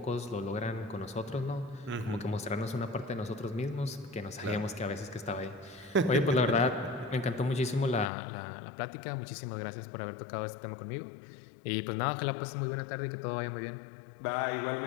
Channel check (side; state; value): right; drops out; at 8.1 s